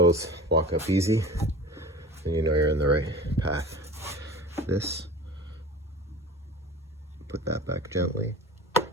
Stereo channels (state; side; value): normal; both; correlation 0.37